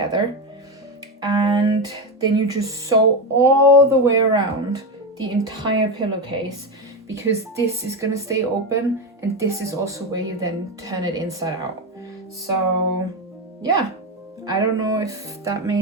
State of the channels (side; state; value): both; normal; correlation 0.13